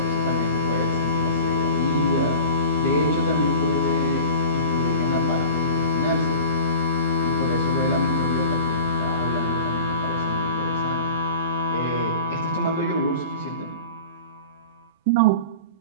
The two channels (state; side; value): inverted; both; correlation -0.38